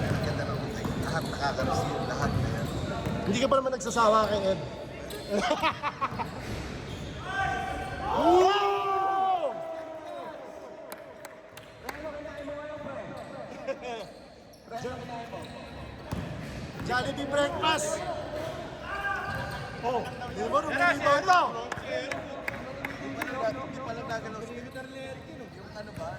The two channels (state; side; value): identical; both; correlation 1.00